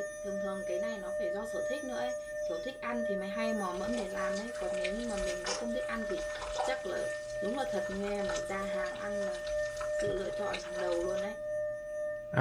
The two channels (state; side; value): identical; both; correlation 1.00